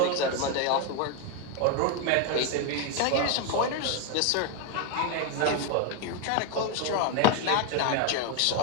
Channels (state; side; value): different; both; correlation 0.01